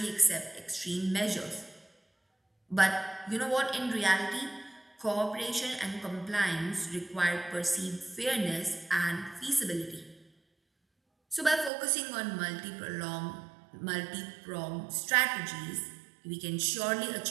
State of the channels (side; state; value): left; drops out; at 11.7 s